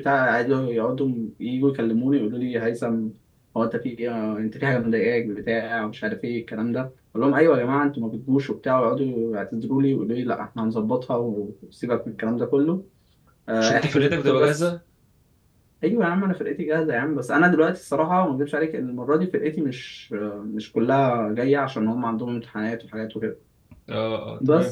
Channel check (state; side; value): identical; both; correlation 1.00